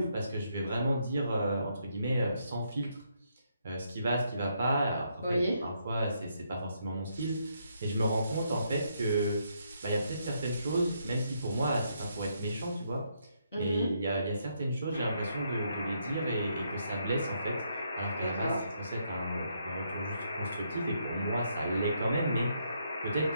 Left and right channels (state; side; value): inverted; both; correlation -0.75